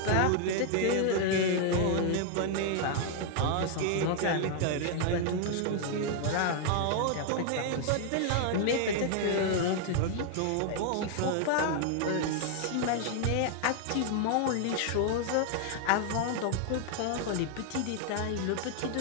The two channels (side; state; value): both; different; correlation 0.00